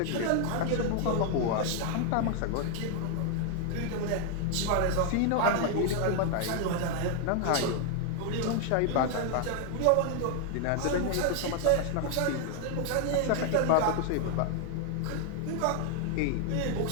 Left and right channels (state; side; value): different; both; correlation 0.00